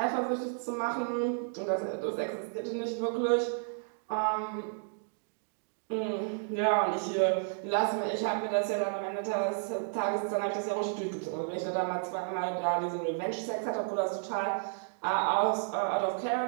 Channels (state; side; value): silent; left; digital silence